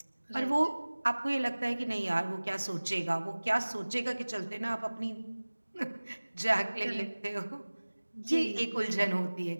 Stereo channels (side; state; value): both; inverted; correlation -1.00